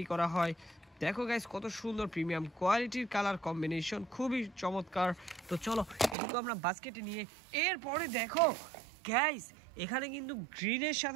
করা হয়। দেখো গাইস, কত সুন্দর প্রিমিয়াম কোয়ালিটির কালার কম্বিনেশন, খুবই চমৎকার। তো চলো এটুকু আমরা বাস্কেটে নিয়ে এরপরে দেখো গাইস, এখানে কিন্তু গ্রিনের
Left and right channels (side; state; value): left; drops out; at 6.2 s